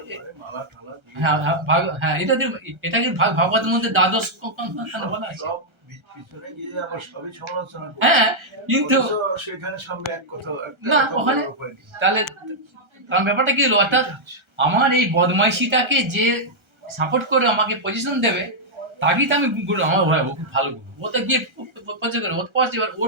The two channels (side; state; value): left; late; 1.3 ms